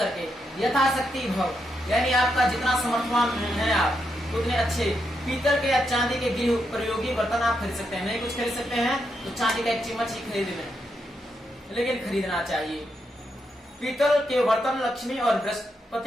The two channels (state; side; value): normal; both; correlation 0.82